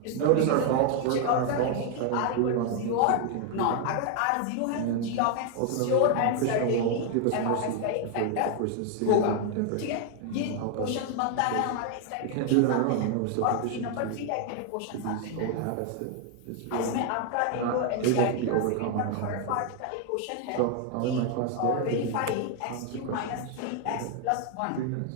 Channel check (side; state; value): both; different; correlation 0.01